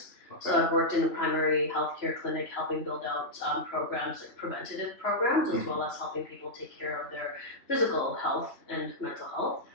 Okay. So I've worked in a primary healthcare clinic, helping build out programs, like preventative programs, as well as helping people take care of their physical health and mental health.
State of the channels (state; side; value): late; right; 3.0 ms